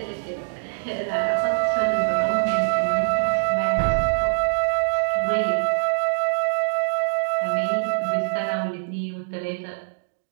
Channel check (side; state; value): left; silent; digital silence